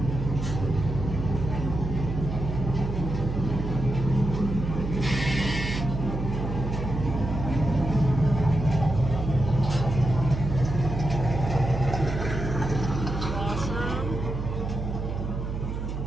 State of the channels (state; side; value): noise; right; hum, 4 dB below the sound